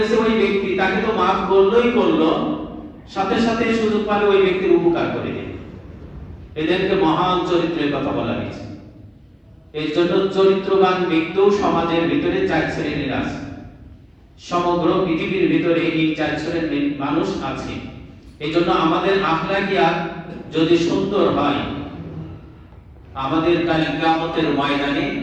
ওই ব্যক্তি, তাকে তো মাফ করলোই করলো, সাথে সাথে সুযোগ পালে ওই ব্যক্তির উপকার করে দেন। এদেরকে মহান চরিত্রের কথা বলা হয়েছে। এর জন্য চরিত্রবান ব্যক্তিও সমাজের ভিতরে ৪ শ্রেণীর আছে। সমগ্র পৃথিবীর ভিতরে এই ৪ শ্রেণীর মানুষ আছে। এই জন্য আমাদের আখলাকিয়াত যদি সুন্দর হয়, আমাদের কাল কিয়ামতের ময়দানে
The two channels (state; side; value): identical; both; correlation 1.00